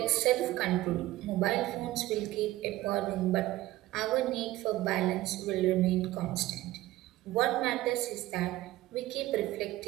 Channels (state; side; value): quieter; left; 16.7 dB